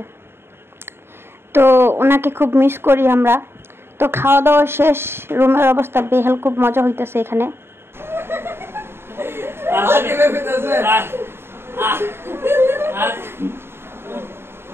তো ওনাকে খুব মিস করি আমরা। তো খাওয়া দাওয়া শেষ, রুমের অবস্থা বেহাল, খুব মজা হইতেছে এখানে।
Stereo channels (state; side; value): late; left; 0.11 ms